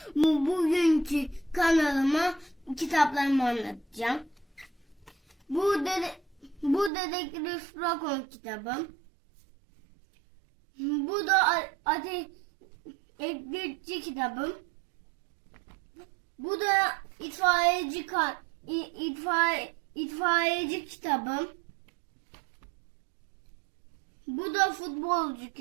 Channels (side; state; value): left; drops out; at 6.9 s